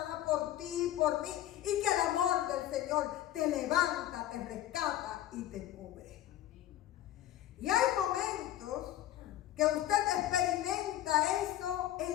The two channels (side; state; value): right; quieter; 13.1 dB